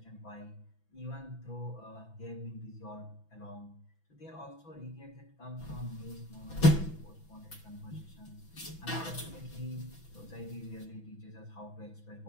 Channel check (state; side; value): late; right; 6.0 ms